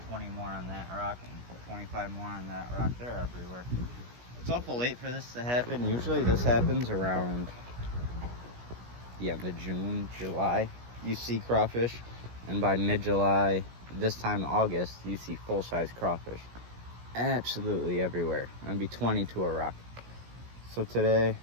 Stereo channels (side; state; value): left; late; 17 ms